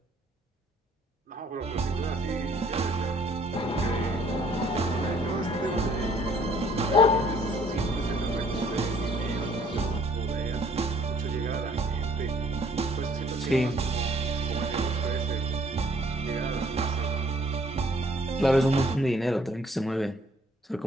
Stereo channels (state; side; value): normal; both; correlation 0.60